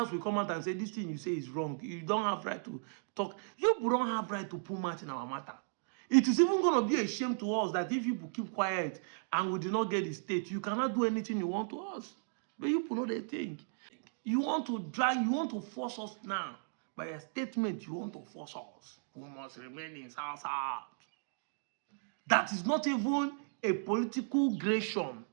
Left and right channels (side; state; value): left; silent; digital silence